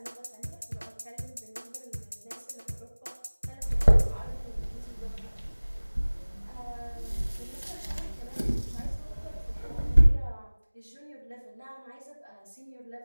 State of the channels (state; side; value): inverted; both; correlation -1.00